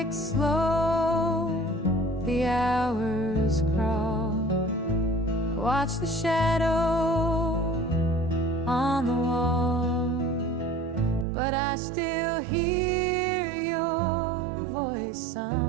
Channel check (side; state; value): left; drops out; at 11.2 s